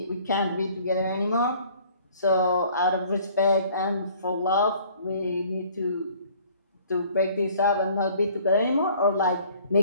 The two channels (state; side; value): inverted; both; correlation -0.54